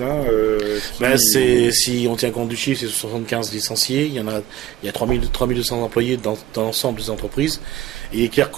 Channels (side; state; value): left; quieter; 13.5 dB